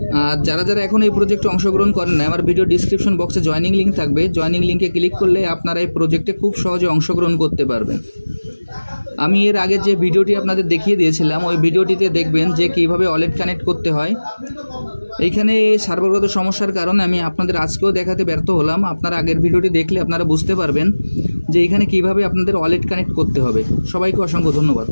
আর যারা এখন এই প্রজেক্টে অংশগ্রহণ করেন না, আমার ভিডিও ডিসক্রিপশন বক্সে জয়েনিং লিঙ্ক থাকবে, জয়েনিং লিঙ্কে ক্লিক করলে আপনারা এই প্রজেক্টে খুব সহজে অংশগ্রহণ করতে পারবেন। আমি এর আগে যে ভিডিওটি আপনাদের দেখিয়ে দিয়েছিলাম ওই ভিডিওটিতে দেখবেন যে কীভাবে ওয়ালেট কানেক্ট করতে হয়। এইখানে সার্ভারগত সমস্যার কারণে আমি আপনাদের আজকেও দেখাতে ব্যর্থ হলাম। আপনারা আগের ভিডিওটি দেখলে আপনারা বুঝতে পারবেন যে এইখানে কীভাবে আপনাদের ওয়ালেট কানেক্ট করতে হবে। সবাইকে অসংখ্য ধন্যবাদ।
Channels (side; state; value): both; inverted; correlation -1.00